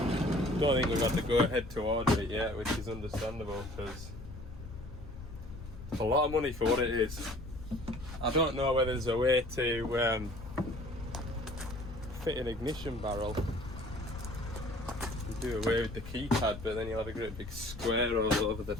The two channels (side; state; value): left; noise; rumble, 12 dB below the sound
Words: Don't think we've had to go ahead to order it yet, which is understandable because it's a lot of money for what it is. I don't know whether there's a way to fit an ignition barrel and do away with the keypad, but then you'll have a great big square all over the